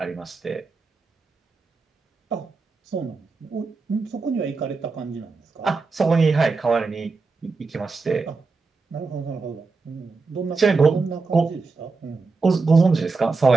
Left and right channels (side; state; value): left; quieter; 4.2 dB